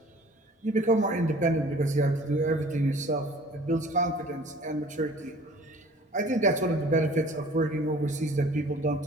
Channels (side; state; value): both; normal; correlation 0.49